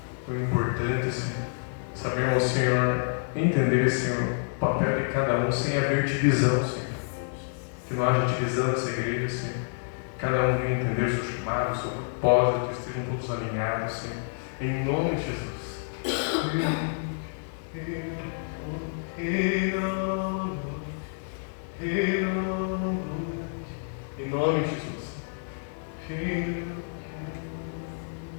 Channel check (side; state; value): right; silent; 55 dB below the other